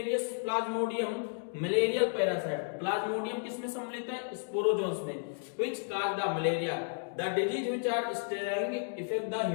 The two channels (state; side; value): silent; right; digital silence